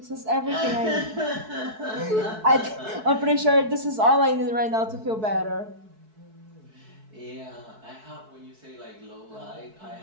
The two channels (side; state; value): left; late; 4.6 ms